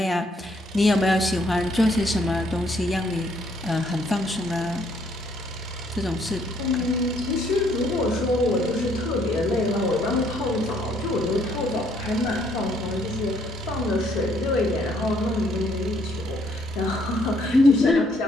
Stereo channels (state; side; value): normal; both; correlation 0.68